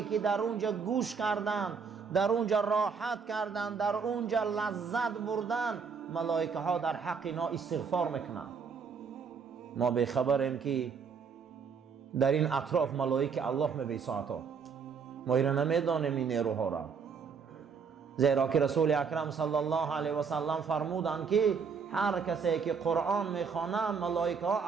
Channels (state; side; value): quieter; left; 5.9 dB